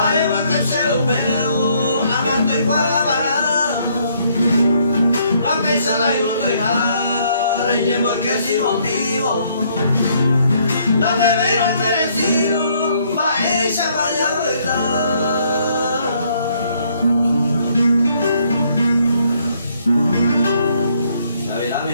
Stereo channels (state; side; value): inverted; both; correlation -0.68